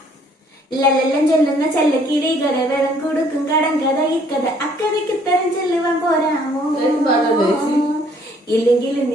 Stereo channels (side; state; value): both; normal; correlation 0.62